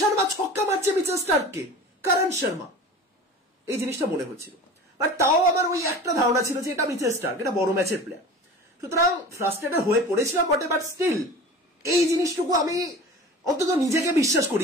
ছক্কা মারছে মিচেল স্টার্ককে, করণ শর্মা, এই জিনিসটা মনে হচ্ছিল। বাট তাও আমার ওই একটা ধারণা ছিল যে এটা মিচেল স্টার্ক, এটা বড় ম্যাচের প্লেয়ার। সুতরাং ফ্রাস্ট্রেটেড হয়ে পড়েছিলাম বটে, বাট স্টিল এই জিনিসটুকু আমি অন্তত নিজেকে বিশ্বাস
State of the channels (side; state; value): both; normal; correlation 0.37